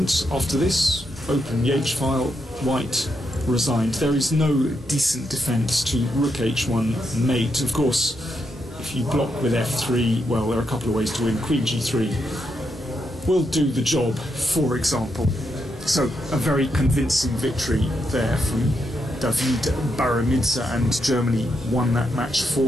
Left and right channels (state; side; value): normal; both; correlation 0.82